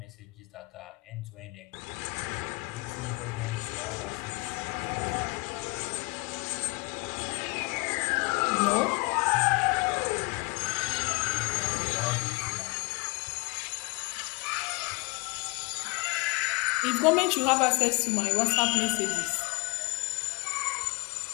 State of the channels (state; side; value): quieter; right; 28.4 dB